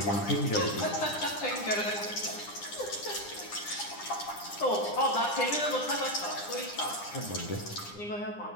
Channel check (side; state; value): right; late; 9.8 ms